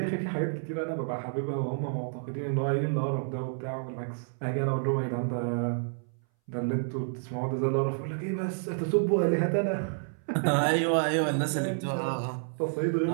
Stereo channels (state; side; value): silent; left; 58 dB below the other